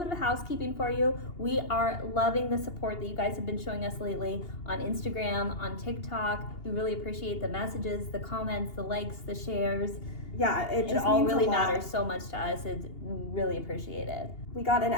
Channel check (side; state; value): right; late; 2.8 ms